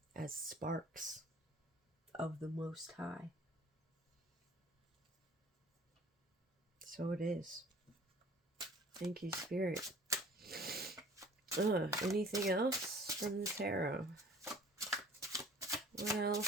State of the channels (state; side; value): normal; both; correlation 0.50